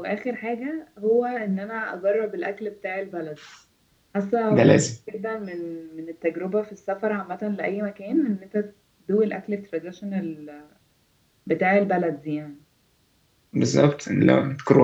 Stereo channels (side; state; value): both; identical; correlation 1.00